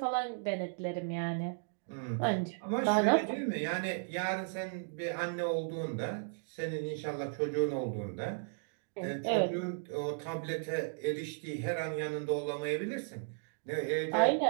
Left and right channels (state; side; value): silent; left; digital silence